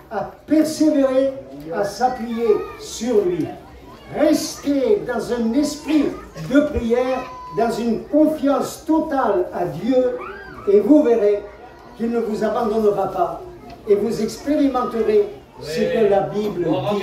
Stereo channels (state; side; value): identical; both; correlation 1.00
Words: à persévérer, à s'appuyer sur lui. Rester dans un esprit de prière, dans une confiance totale à Dieu, et vous verrez qu'il ne vous abandonnera pas et vous expérimenterez ce que la Bible